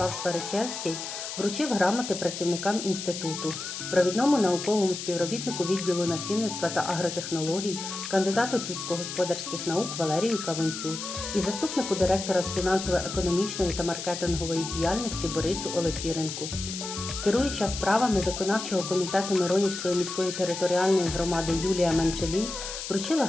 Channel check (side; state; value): left; noise; hiss, 7 dB below the sound